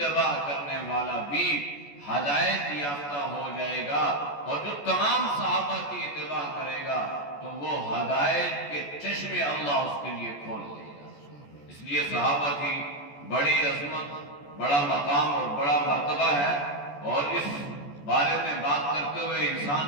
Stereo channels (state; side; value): late; right; 14 ms